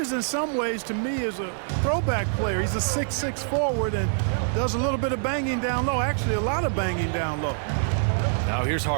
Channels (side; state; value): left; silent; digital silence